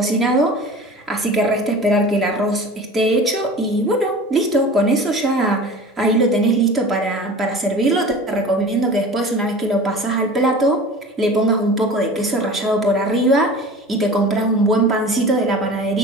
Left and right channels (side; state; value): both; normal; correlation 0.38